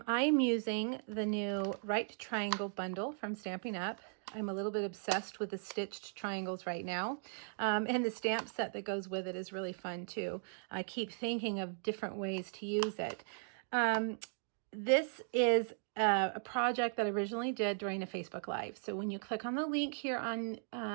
using the new Right Triangle bundle from Stampin' Up. I'm a little bit obsessed with the stitched triangles right now, and the stamp set that goes with it is really fun too. I keep thinking of different ways to use it. This is a project that I originally did during a Facebook Live. So when you click on the link here on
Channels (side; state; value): left; silent; digital silence